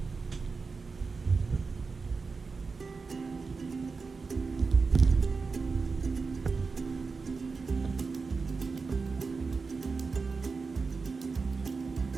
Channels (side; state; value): left; quieter; 4.5 dB